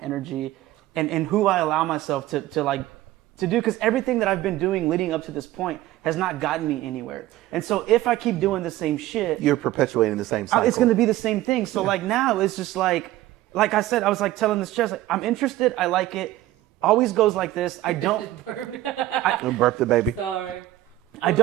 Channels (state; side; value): quieter; left; 15.3 dB